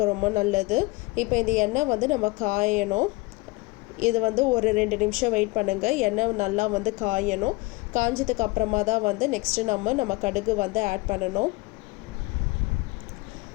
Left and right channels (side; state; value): right; quieter; 23.6 dB